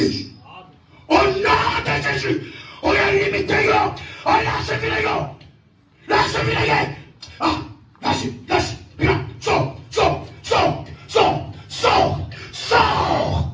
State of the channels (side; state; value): both; identical; correlation 1.00